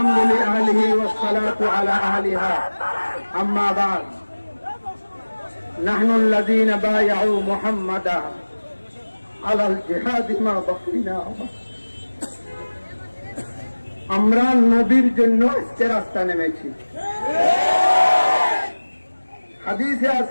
আলিহি ওয়াসসালাতু আলা আহলিহা আম্মা বাদ নাহনু আল্লাযীনা বায়াউ মুহাম্মাদা আলাল জিহাদি মা বাকিনা আমরা নবীর জন্য আজকে রাস্তা নেমেছি। হাদিসে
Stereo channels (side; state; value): both; inverted; correlation -1.00